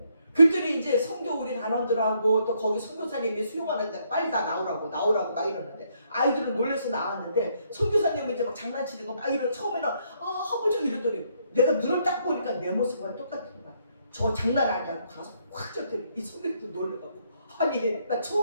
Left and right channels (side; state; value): both; inverted; correlation -0.71